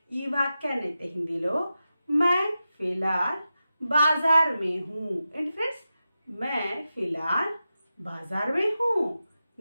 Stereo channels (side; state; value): both; inverted; correlation -0.91